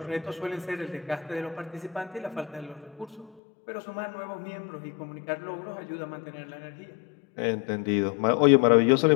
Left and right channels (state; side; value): drops out; right; at 3.3 s